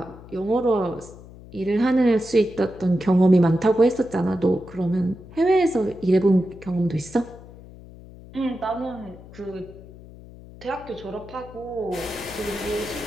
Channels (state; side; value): noise; left; hum, 18 dB below the sound